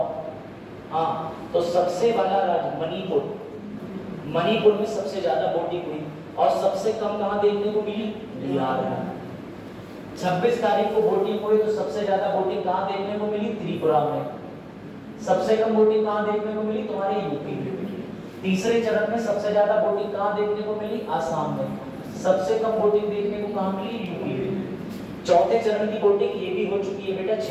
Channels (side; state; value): both; identical; correlation 1.00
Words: हाँ, तो सबसे वाला राज्य मणिपुर में सबसे ज्यादा वोटिंग हुई, और सबसे कम कहाँ देखने को मिली? बिहार में। 26 तारीख को वोटिंग हुई तो सबसे ज्यादा वोटिंग कहाँ देखने को मिली? त्रिपुरा में। सबसे कम वोटिंग कहाँ देखने को मिली? तुम्हारे यूपी में। तीसरे चरण में सबसे ज्यादा वोटिंग कहाँ देखने को मिली? आसाम में। सबसे कम वोटिंग देखने को कहाँ मिली? यूपी में। चौथे चरण की वोटिंग ये भी हो चुकी है बेटा